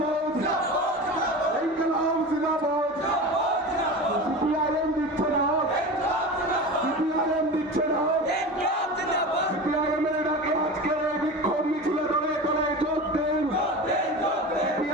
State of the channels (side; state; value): both; normal; correlation 0.30